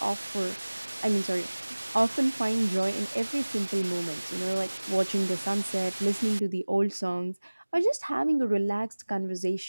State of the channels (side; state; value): both; inverted; correlation -1.00